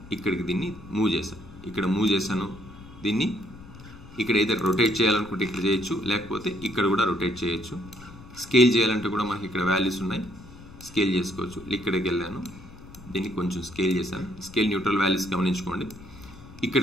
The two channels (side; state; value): left; noise; rumble, 18 dB below the sound